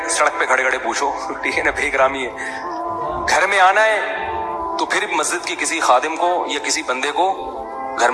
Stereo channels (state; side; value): identical; both; correlation 1.00